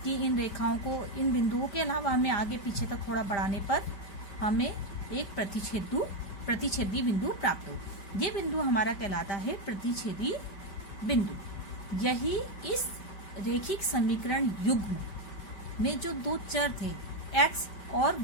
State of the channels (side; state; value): right; late; 5.1 ms